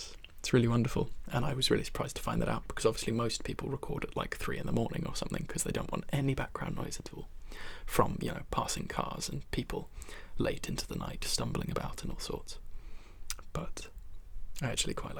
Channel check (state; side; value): identical; both; correlation 1.00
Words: It's really wonderful, and I was really surprised to find that out, because obviously most people record at like 3 a.m. or something because they don't want any background noise at all from, you know, passing cars and people late into the night stumbling about and all sorts. But I actually quite